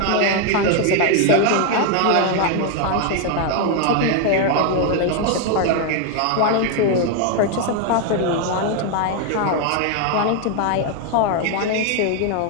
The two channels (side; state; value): both; different; correlation 0.01